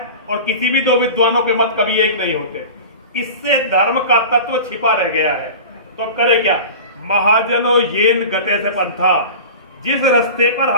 और किसी भी दो विद्वानों के मत कभी एक नहीं होते। इससे धर्म का तत्व छिपा रह गया है। तो अब करे क्या? महाजनो येन गते से पंथा, जिस रास्ते पर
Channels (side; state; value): both; inverted; correlation -0.34